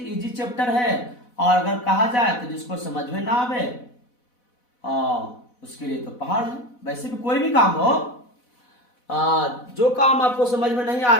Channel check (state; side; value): late; right; 4.1 ms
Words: चैप्टर है, और अगर कहा जाए तो जिसको समझ में ना आवे उसके लिए तो पहाड़ है। वैसे भी कोई भी काम हो, जो काम आपको समझ में नहीं आ